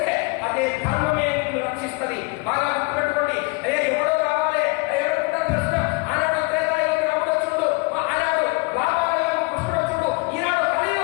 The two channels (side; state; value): right; quieter; 28.4 dB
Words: అదే ధర్మమే నిన్ను రక్షిస్తుంది. బాగా గుర్తుపెట్టుకోండి. అదే ఎవడో రావాలి, ఎవరుకుంటారు ప్రశ్న. ఆనాడు త్రేతాయుగంలో రాముడు వచ్చుడు, ఆనాడు రామాయుగంలో కృష్ణుడు వచ్చుడు, ఈనాడు